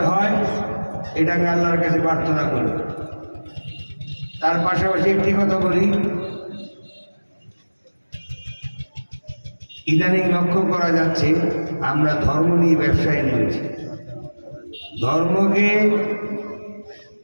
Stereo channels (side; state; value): both; inverted; correlation -1.00